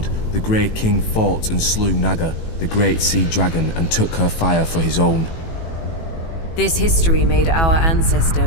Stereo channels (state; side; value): late; right; 18 ms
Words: the Grey King fought and slew Naga, the great sea dragon, and took her fire for his own. This history made our ancestor